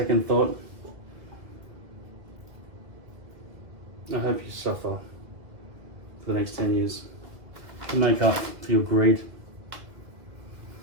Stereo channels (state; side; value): late; left; 1.8 ms